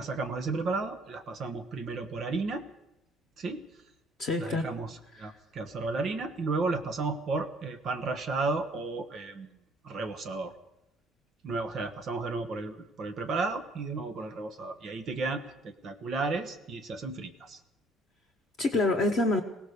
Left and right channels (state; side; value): normal; both; correlation 0.60